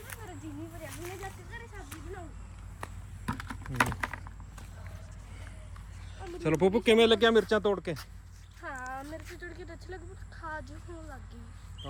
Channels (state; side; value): identical; both; correlation 1.00